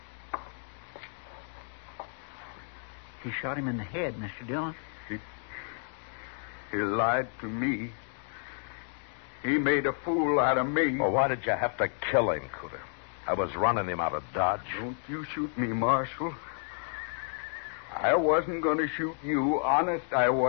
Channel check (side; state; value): right; silent; 57 dB below the other